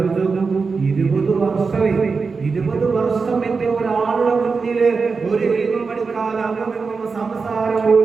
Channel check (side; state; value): left; quieter; 4.7 dB